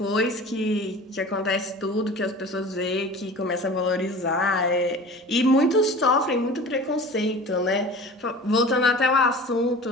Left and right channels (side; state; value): both; normal; correlation 0.39